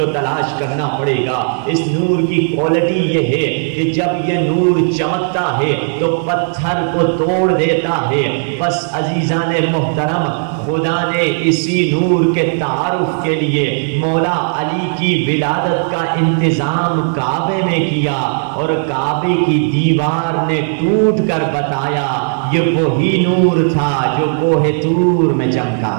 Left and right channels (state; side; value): silent; left; digital silence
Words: تلاش کرنا پڑے گا۔ اس نور کی کوالٹی یہ ہے کہ جب یہ نور چمکتا ہے تو پتھر کو توڑ دیتا ہے۔ بس عزیزان محترم، خدا نے اسی نور کے تعارف کے لیے مولا علی کی ولادت کا انتظام کعبے میں کیا، اور کعبے کی دیوار نے ٹوٹ کر بتایا یہ وہی نور تھا جو کوہ طور میں چمکا